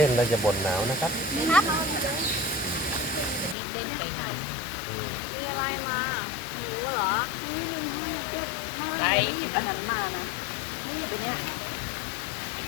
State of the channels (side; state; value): right; drops out; at 3.6 s